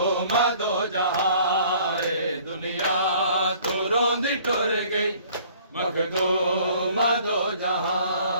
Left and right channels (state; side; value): inverted; both; correlation -0.54